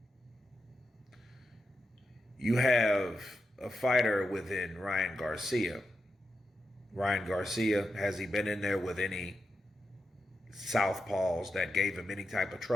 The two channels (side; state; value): both; normal; correlation 0.87